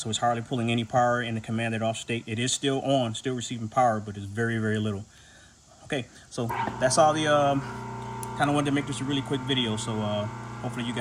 it's hardly pulling any power in the commanded off state. It is still on, still receiving power, but it's very, very little. Okay, so that's all the kind of wanted to make this a really quick video. So hopefully you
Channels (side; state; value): both; identical; correlation 1.00